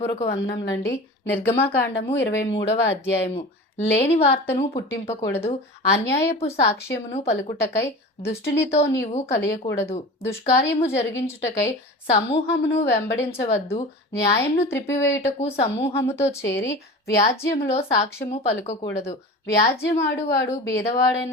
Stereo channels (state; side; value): normal; both; correlation 0.34